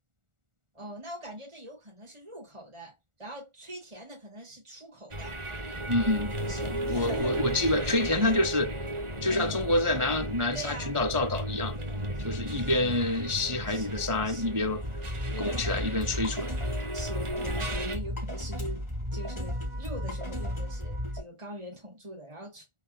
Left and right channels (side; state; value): left; late; 1.4 ms